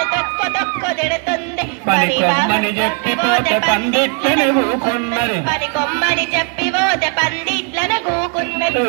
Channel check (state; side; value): quieter; left; 38.5 dB